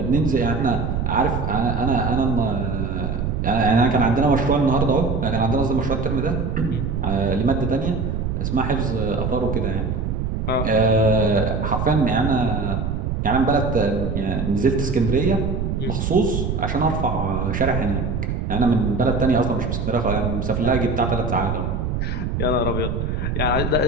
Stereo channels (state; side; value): noise; right; rumble, 1 dB below the sound